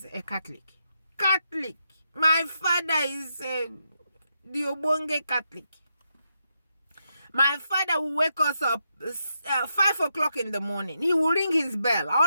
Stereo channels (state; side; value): inverted; both; correlation -0.83